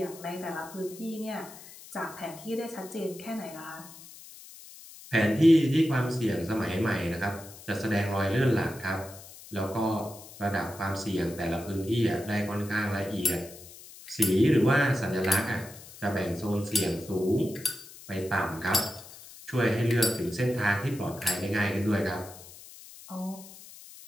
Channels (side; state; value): left; noise; hiss, 18 dB below the sound